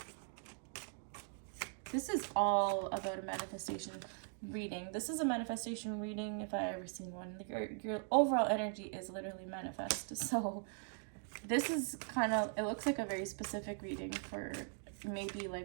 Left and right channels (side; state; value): left; silent; 51 dB below the other